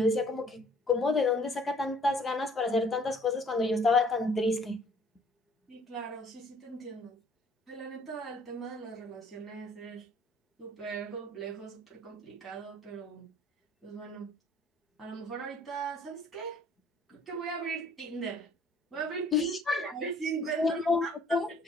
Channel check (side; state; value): both; normal; correlation 0.57